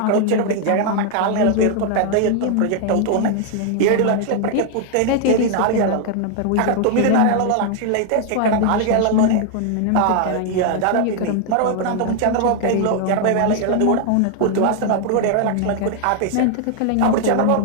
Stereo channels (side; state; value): both; different; correlation 0.00